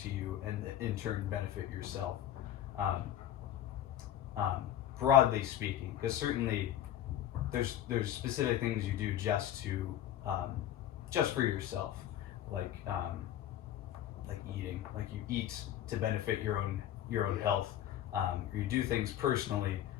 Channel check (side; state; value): right; quieter; 11.5 dB